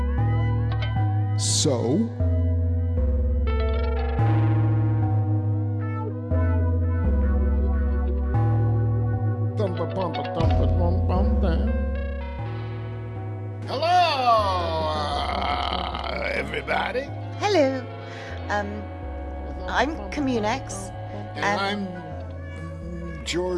So, hello, everybody. Hello. I'm Communex. And I'm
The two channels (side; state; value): both; identical; correlation 1.00